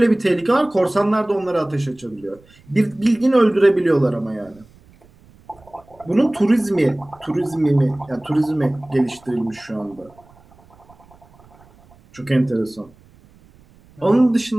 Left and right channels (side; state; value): right; noise; rumble, 28 dB below the sound